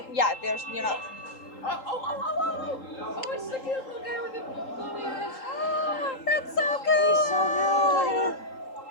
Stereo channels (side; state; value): right; late; 3.8 ms